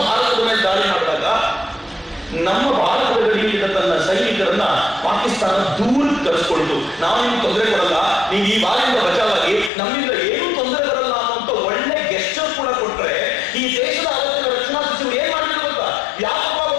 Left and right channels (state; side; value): drops out; right; at 9.7 s